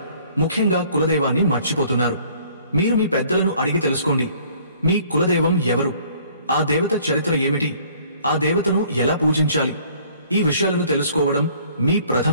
ముఖ్యంగా కులదైవాన్ని మర్చిపోతున్నారు. మీరు మీ పెద్దలను అడిగి తెలుసుకోండి. మీ కులదైవం ఎవరు? ఆ దేవత చరిత్ర ఏమిటి? ఆ దేవతను ఎలా పూజించాలి? ఈ విషయాలను తెలుసుకోవడం మీ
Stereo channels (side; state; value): both; inverted; correlation -0.56